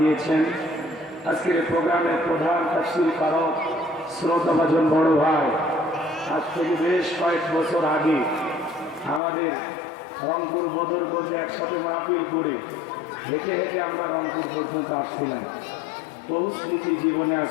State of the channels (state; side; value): drops out; right; at 9.2 s